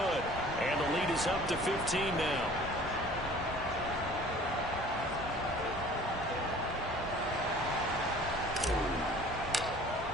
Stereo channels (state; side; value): normal; both; correlation 0.48